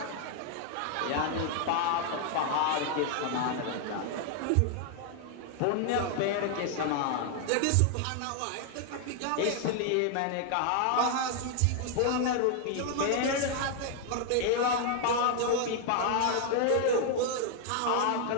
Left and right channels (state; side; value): different; both; correlation 0.00